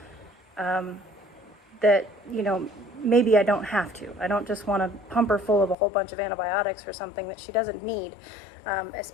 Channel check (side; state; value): right; drops out; at 5.8 s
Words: you know, maybe I don't have to. I don't just want to pump her full of a whole bunch of antibiotics or something that she doesn't need,